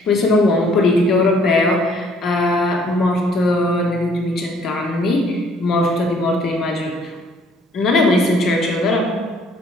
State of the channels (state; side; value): normal; both; correlation 0.61